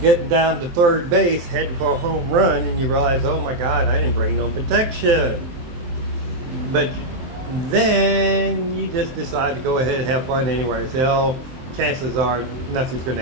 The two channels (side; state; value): left; late; 23 ms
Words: down to third base, heading for a home run, and you realize, oh my God, I didn't bring no protection. But then you just decide to go ahead and have fun anyway. Say, oh, chances are nothing's going to